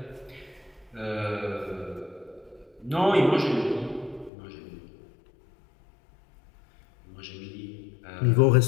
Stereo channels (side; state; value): right; drops out; at 4.3 s